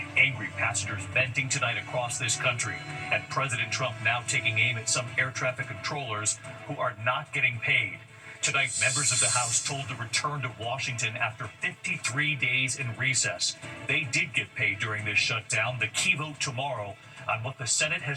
Angry passengers venting tonight across this country. And President Trump now taking aim at some air traffic controllers who are not getting paid. Tonight, members of the House told to return to Washington after 53 days in recess. They did get paid during this shutdown. The key vote tomorrow on what the Senate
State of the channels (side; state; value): both; identical; correlation 1.00